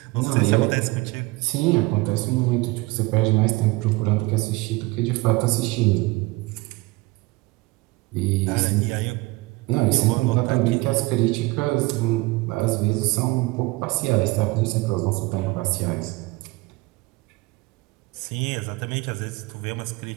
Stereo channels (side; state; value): left; quieter; 23.1 dB